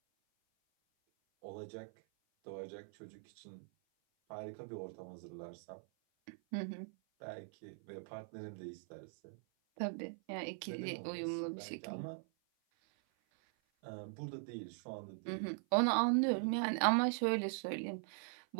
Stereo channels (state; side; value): silent; left; 50 dB below the other